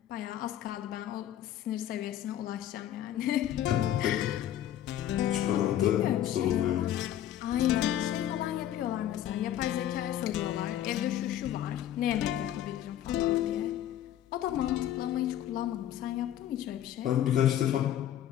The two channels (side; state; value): right; quieter; 11.6 dB